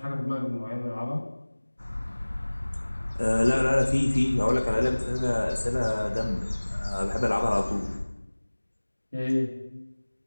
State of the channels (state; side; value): inverted; both; correlation -1.00